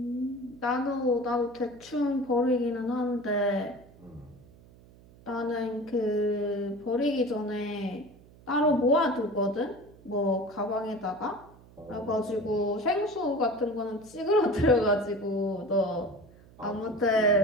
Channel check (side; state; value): right; noise; hum, 24 dB below the sound